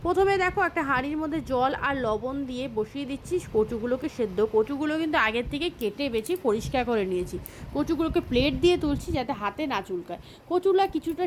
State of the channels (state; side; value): identical; both; correlation 1.00